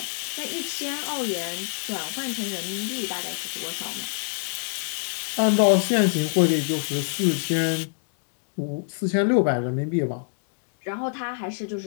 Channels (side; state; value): right; silent; digital silence